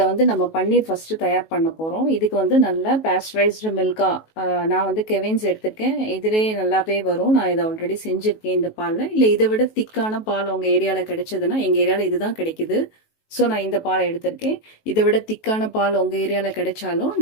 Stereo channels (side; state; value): right; late; 19 ms